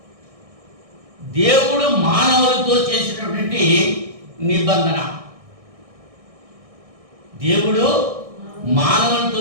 దేవుడు మానవులతో చేసినటువంటి నిబంధన, దేవుడు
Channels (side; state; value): left; late; 1.6 ms